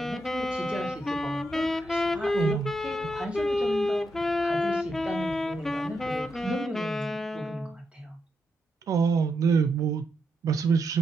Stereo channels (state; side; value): normal; both; correlation 0.83